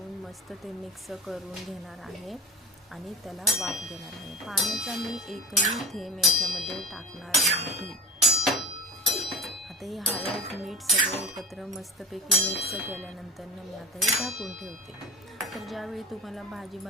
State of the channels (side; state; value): both; normal; correlation 0.35